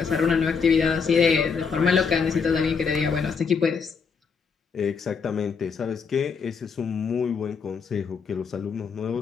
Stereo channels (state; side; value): quieter; right; 5.7 dB